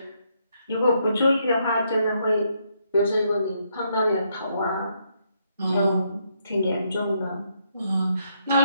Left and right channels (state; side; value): inverted; both; correlation -0.75